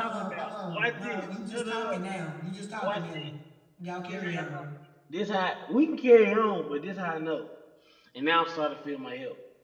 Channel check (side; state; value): both; identical; correlation 1.00